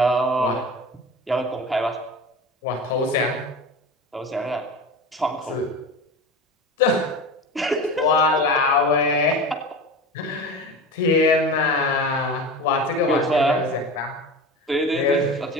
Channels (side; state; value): both; normal; correlation 0.30